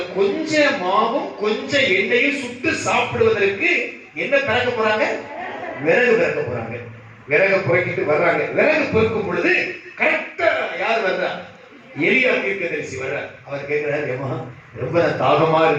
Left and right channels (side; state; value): both; identical; correlation 1.00